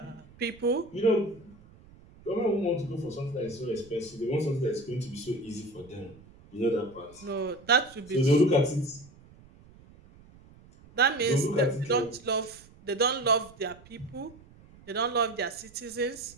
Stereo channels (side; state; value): right; noise; rumble, 24 dB below the sound